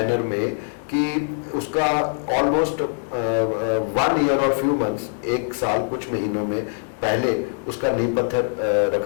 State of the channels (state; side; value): silent; right; 64 dB below the other